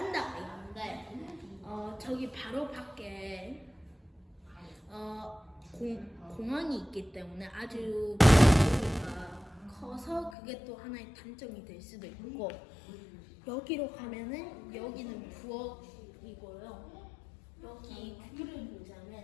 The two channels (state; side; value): drops out; right; at 10.4 s